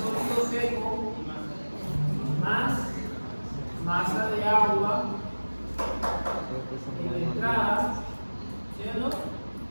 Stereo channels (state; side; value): inverted; both; correlation -1.00